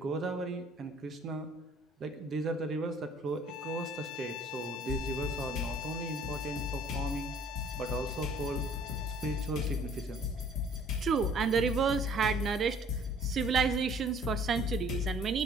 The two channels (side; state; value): both; normal; correlation 0.55